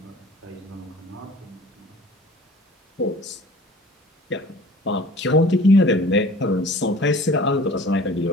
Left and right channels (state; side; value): normal; both; correlation 0.46